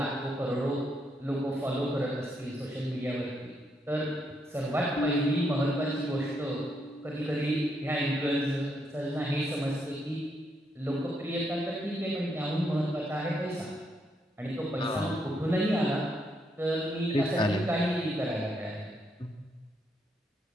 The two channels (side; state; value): both; normal; correlation 0.77